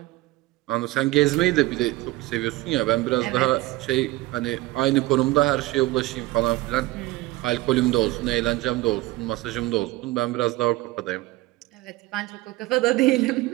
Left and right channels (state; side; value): quieter; left; 19.0 dB